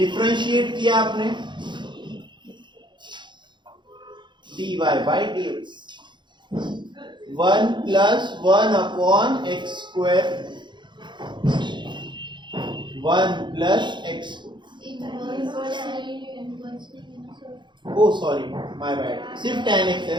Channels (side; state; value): left; late; 0.23 ms